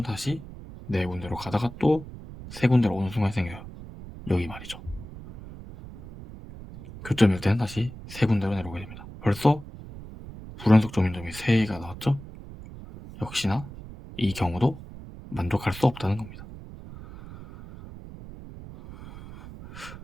다시 4군데로 가다가 또 3군데로 오는 순간이 생겨요. 여기 말이죠. 교점일 때는 다시 3군데로 내려오게 됩니다. 벌써 불연속 점인점이 3개가 나왔죠? 역시나 이 경우도 만족할 수 없다는 겁니다.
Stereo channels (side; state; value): right; noise; rumble, 14 dB below the sound